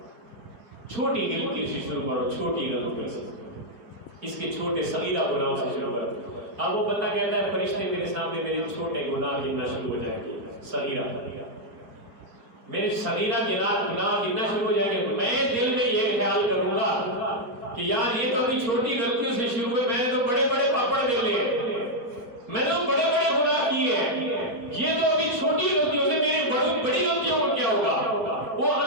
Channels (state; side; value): late; left; 4.6 ms